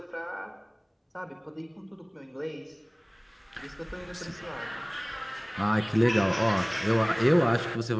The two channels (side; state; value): both; identical; correlation 1.00